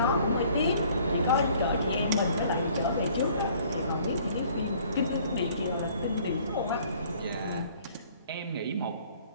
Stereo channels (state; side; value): inverted; both; correlation -0.57